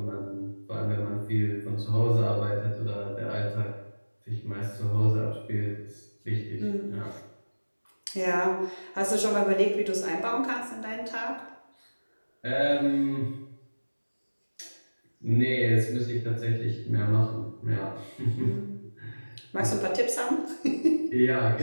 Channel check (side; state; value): both; inverted; correlation -1.00